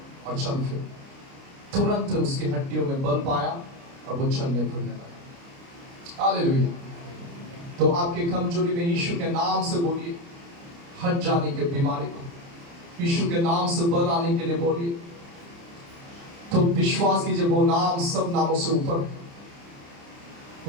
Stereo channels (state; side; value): late; left; 29 ms